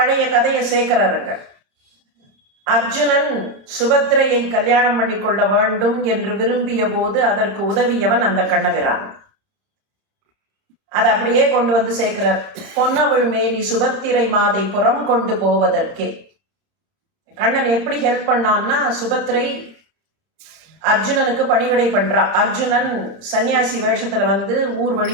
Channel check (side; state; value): left; late; 31 ms